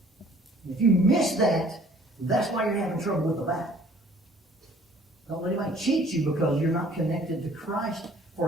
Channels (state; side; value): normal; both; correlation 0.55